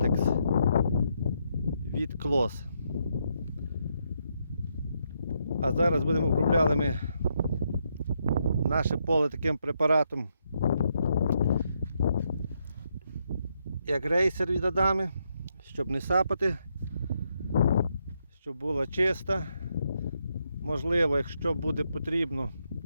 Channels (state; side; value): inverted; both; correlation -0.78